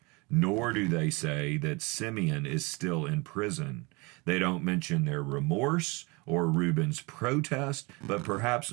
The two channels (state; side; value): quieter; left; 27.1 dB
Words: Nor do they say that Simeon is still in prison. They don't mention their remorse or Reuben's protest, but perhaps